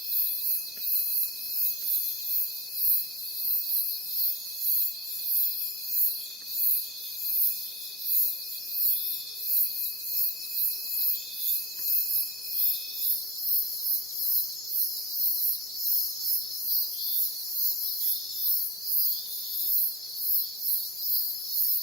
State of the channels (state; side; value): normal; both; correlation 0.43